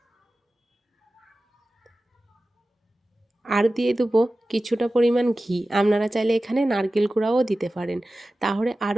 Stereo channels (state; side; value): normal; both; correlation 0.95